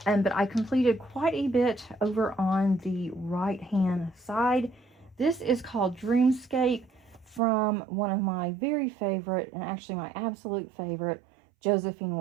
But I completed quite a bit over on the right-hand side. This is called Dreamscape from one of my very favorite, and actually my absolute favorite, Josephine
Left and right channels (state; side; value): drops out; left; at 7.4 s